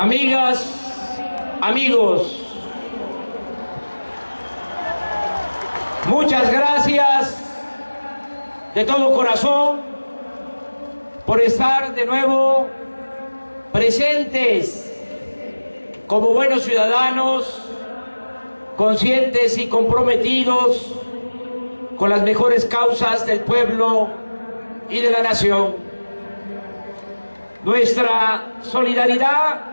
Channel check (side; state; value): both; inverted; correlation -1.00